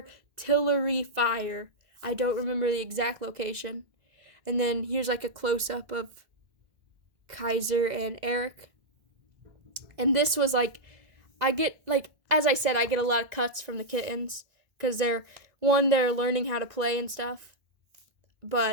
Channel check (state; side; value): late; left; 2.0 ms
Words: fire. I don't remember the exact location. And then here's like a close-up of Kaiser and Eric. And this was like, I get, like, as I said, I get a lot of cuts from the kittens because they're learning how to play and stuff.